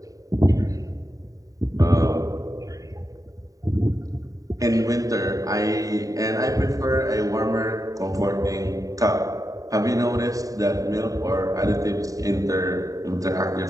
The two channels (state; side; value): late; left; 0.16 ms